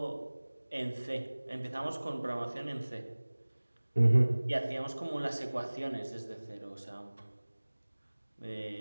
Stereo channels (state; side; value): inverted; both; correlation -1.00